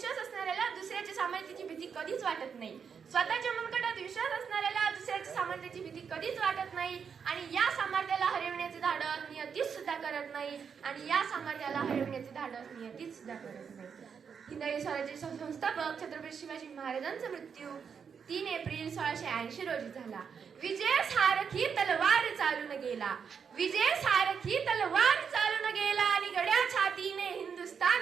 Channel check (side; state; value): left; quieter; 6.6 dB